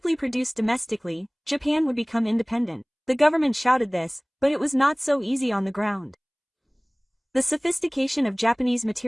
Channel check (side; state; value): both; identical; correlation 1.00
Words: produced domestically, Japan would become independent. The government shouted this, but it was not so easy on the ground. The sophistication of Japanese